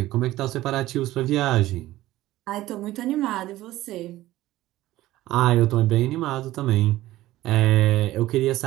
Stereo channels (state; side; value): quieter; left; 16.0 dB